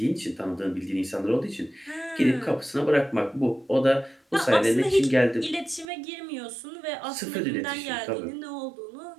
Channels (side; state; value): left; drops out; at 5.9 s